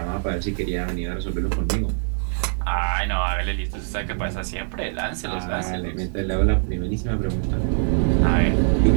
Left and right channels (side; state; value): left; silent; 57 dB below the other